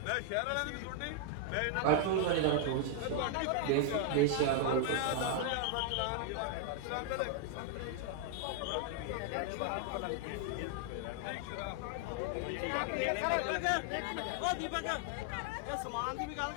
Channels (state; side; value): different; both; correlation 0.00